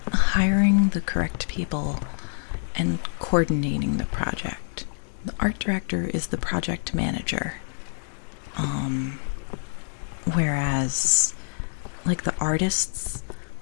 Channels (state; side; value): silent; right; digital silence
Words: hiring the correct people and coordinating the project. The art director is the project manager. Whereas like the artists